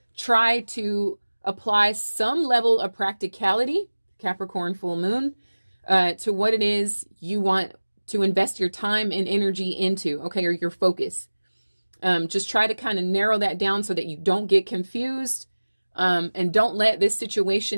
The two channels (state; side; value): inverted; both; correlation -1.00